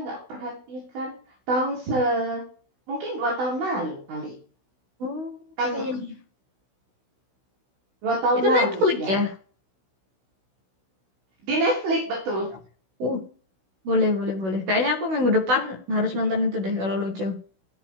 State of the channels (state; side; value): late; left; 16 ms